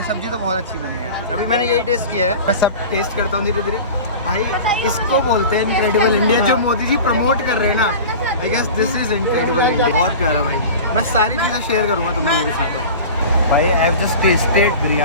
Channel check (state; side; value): inverted; both; correlation -0.35